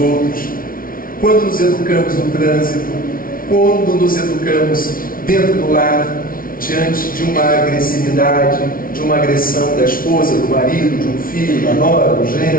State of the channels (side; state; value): right; late; 0.42 ms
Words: quando nos educamos no trânsito, quando nos educamos dentro do lar, diante de uma agressividade, de uma agressão da esposa, do marido, de um filho, da nora, do